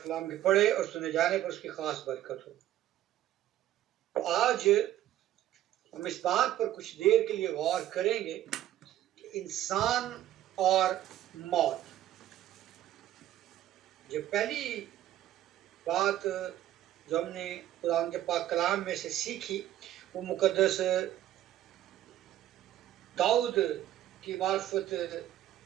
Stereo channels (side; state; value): left; quieter; 12.9 dB